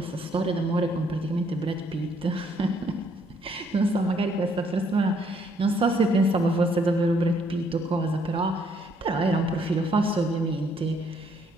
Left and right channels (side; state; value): both; normal; correlation 0.67